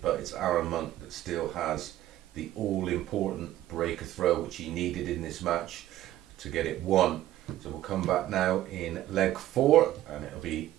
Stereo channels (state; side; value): quieter; left; 13.9 dB